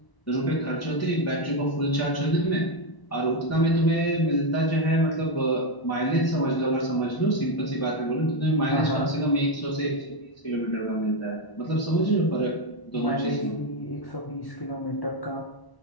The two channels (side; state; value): right; late; 1.0 ms